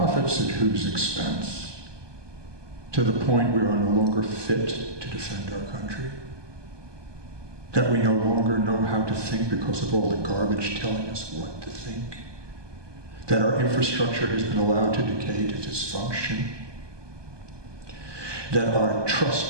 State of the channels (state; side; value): late; left; 1.2 ms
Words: at whose expense? To the point we are no longer fit to defend our country? That we no longer know how to think because of all the garbage telling us what to think? That our infrastructure has been allowed to decay to dysfunction? That our